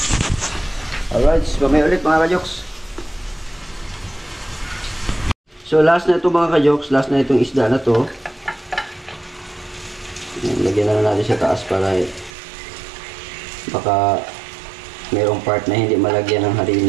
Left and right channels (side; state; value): left; drops out; at 12.3 s